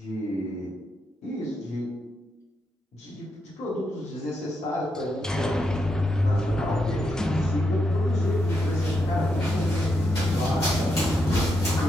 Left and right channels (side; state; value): both; normal; correlation 0.82